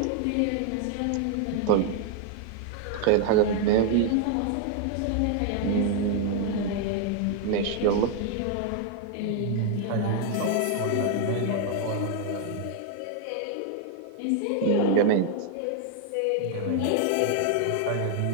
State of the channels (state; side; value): different; both; correlation 0.00